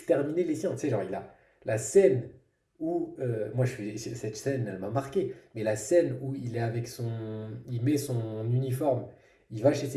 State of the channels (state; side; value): identical; both; correlation 1.00